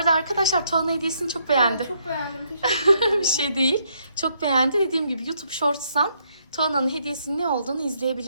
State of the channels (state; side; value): inverted; both; correlation -0.73